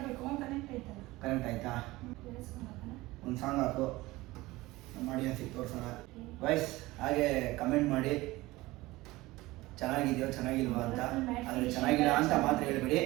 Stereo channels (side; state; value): left; quieter; 19.6 dB